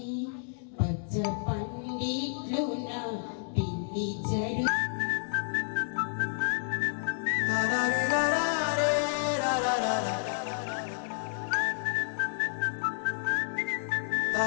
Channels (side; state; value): right; silent; 57 dB below the other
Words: పచ్చ పండిట్లు నా పిల్లి జడు